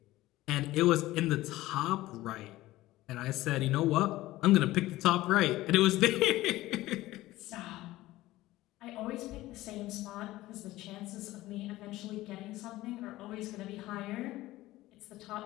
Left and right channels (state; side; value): quieter; right; 17.0 dB